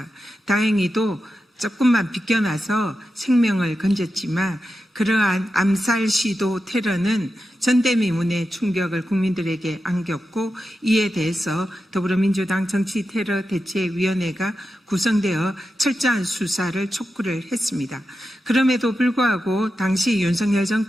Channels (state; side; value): normal; both; correlation 0.90